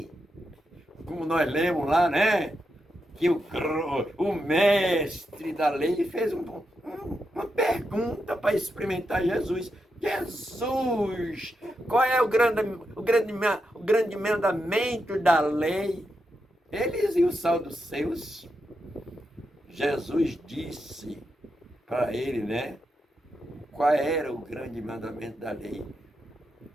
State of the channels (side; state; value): both; normal; correlation 0.85